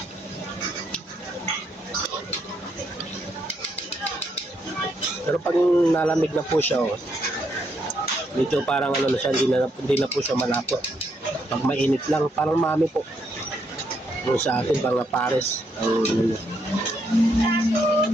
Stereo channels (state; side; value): normal; both; correlation 0.76